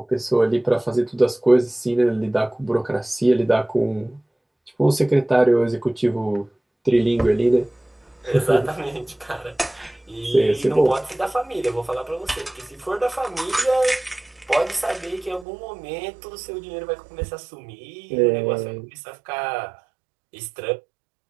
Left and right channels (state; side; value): drops out; left; at 15.5 s